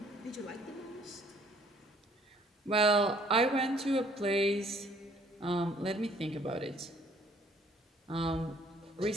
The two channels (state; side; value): normal; both; correlation 0.60